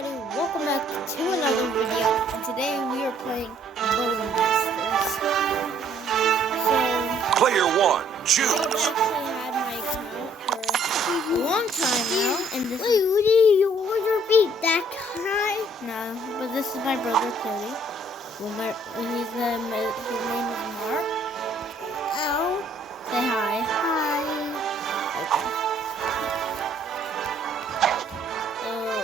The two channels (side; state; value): both; normal; correlation 0.62